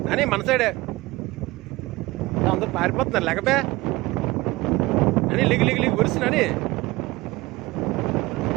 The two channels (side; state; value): left; quieter; 20.6 dB